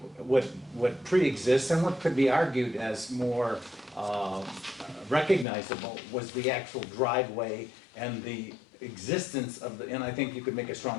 What pre-exists and what could be argued as more recognizable was the actual driveway and the existence of and I think you could make a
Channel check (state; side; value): drops out; right; at 5.5 s